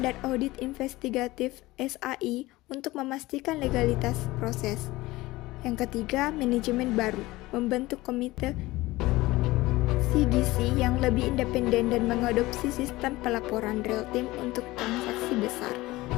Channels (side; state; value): right; quieter; 19.3 dB